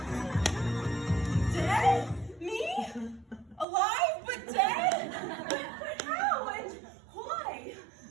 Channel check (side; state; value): left; drops out; at 3.7 s